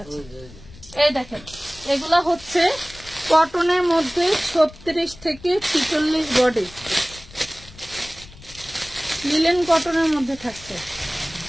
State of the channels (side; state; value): left; noise; rumble, 20 dB below the sound